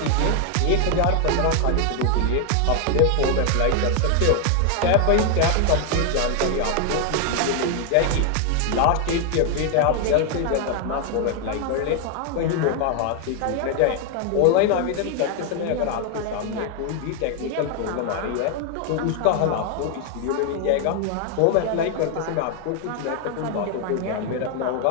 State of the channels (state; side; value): different; both; correlation 0.00